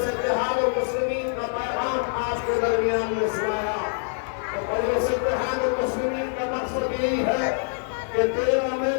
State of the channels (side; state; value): right; silent; 62 dB below the other